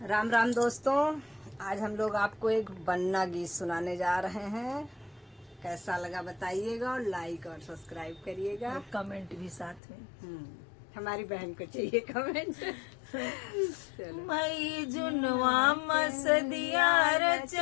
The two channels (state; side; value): drops out; right; at 9.8 s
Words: राम राम दोस्तों, आज हम लोग आपको एक बन्ना गीत सुनाने जा रहे हैं। कैसा लगा बताइएगा और लाइक और सब्सक्राइब करिएगा। और कमेंट भी साथ में। हमारी बहन को चाहिए कमेंट। चलो। मई जुनवा मस दिया